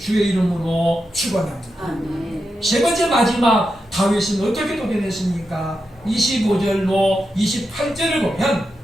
이름으로 축원합니다. 아멘. 세 번째 마지막 다윗은 어떻게 도전했습니까? 25절로 28절을 보면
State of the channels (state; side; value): normal; both; correlation 0.88